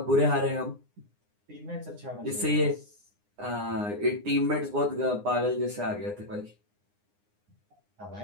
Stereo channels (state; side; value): late; left; 9.7 ms